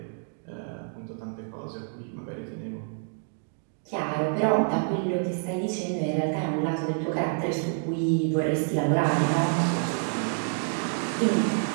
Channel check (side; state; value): left; silent; 59 dB below the other